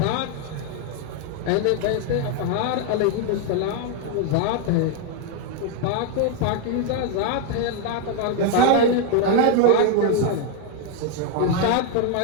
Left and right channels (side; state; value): both; different; correlation 0.01